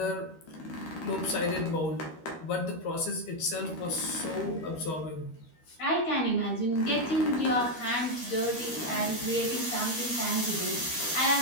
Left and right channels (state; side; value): late; right; 13 ms